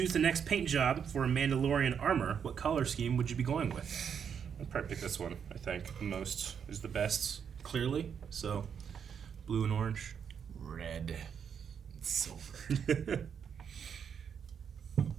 the next paint job for a Mandalorian armor, what color scheme would you be going with? I'd probably pick this one, I think. The most is the best, clearly. So, blue and orange. Red. Silver.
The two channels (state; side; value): quieter; left; 7.4 dB